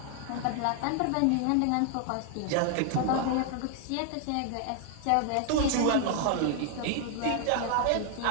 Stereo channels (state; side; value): different; both; correlation 0.00